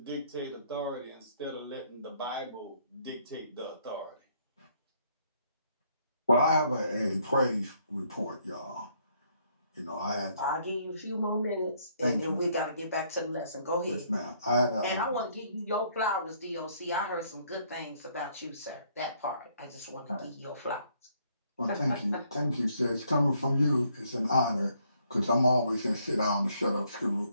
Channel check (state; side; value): inverted; both; correlation -0.68